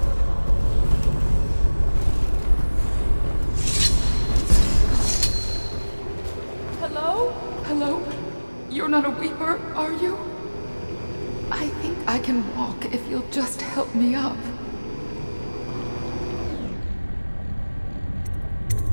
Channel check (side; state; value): both; inverted; correlation -1.00